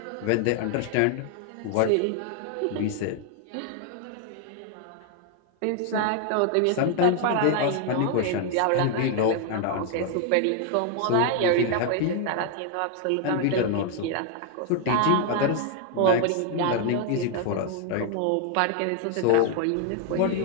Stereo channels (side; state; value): both; different; correlation 0.00